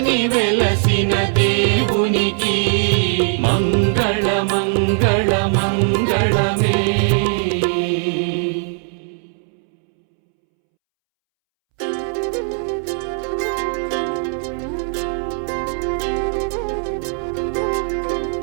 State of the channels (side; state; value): left; silent; 66 dB below the other